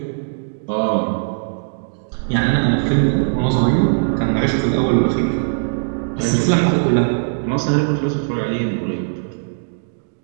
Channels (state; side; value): silent; left; digital silence